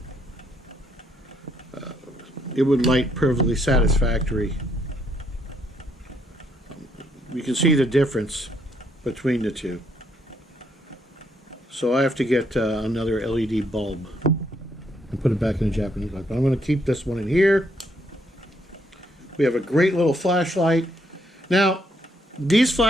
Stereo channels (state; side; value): normal; both; correlation 0.73